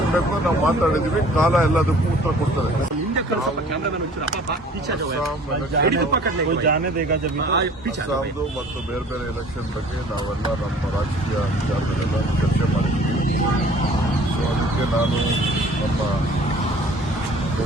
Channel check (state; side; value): normal; both; correlation 0.51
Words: ಬೇಕೋ ನಾವು ಮಾತಾಡಿದೀವಿ. ಕಾಲ ಎಲ್ಲದಕ್ಕೂ ಉತ್ತರ ಕೊಡ್ತದೆ. ಅಸ್ಸಾಂದು ಮತ್ತು ಬೇರೆ ಬೇರೆ ಎಲೆಕ್ಷನ್ ಬಗ್ಗೆ ನಾವೆಲ್ಲ ನಮ್ಮ ರಾಜಕೀಯ ವಿಚಾರಗಳೆಲ್ಲ ಚರ್ಚೆ ಮಾಡಿದ್ದೀವಿ. ಸೊ ಅದಕ್ಕೆ ನಾನು ನಮ್ಮ